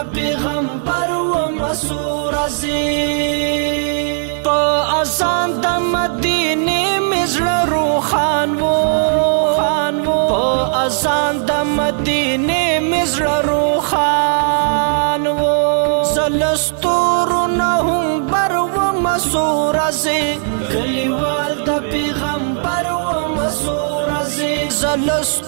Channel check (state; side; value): silent; left; 68 dB below the other